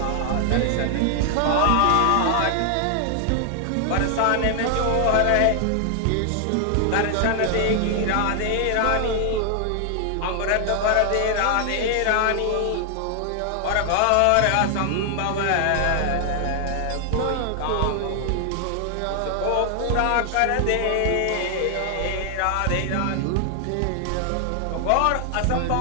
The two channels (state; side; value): different; both; correlation 0.00